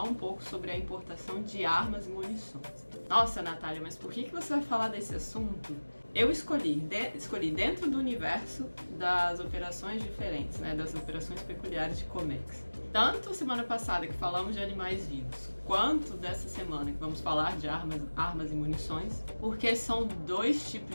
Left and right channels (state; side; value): inverted; both; correlation -1.00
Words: um pouco sobre a importação de armas e munições. Nossa, Natália, mas por que você vai falar desse assunto? Eu escolhi dentro do universo das operações diferentes, né, das operações peculiares de Comex. Tanto semana passada que falamos de animais vivos, quanto dessa semana que vamos falar de armas e munições, porque são dois